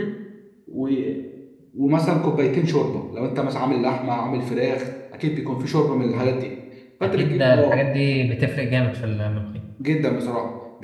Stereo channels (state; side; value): identical; both; correlation 1.00